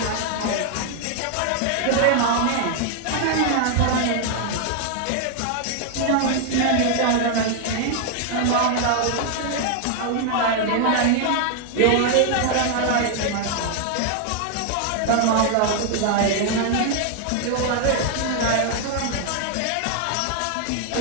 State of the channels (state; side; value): different; both; correlation 0.00